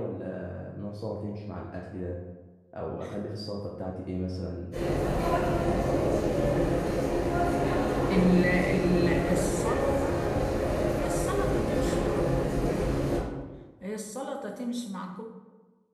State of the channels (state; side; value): identical; both; correlation 1.00